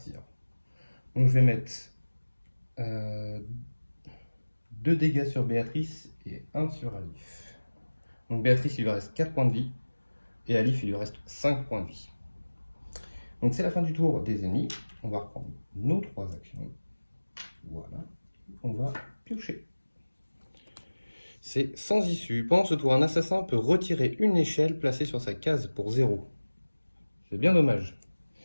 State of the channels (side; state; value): both; inverted; correlation -1.00